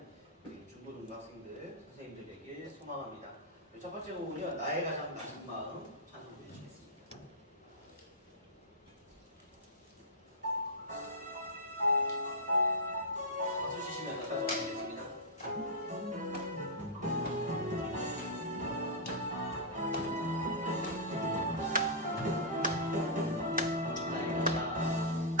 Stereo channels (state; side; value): normal; both; correlation -0.14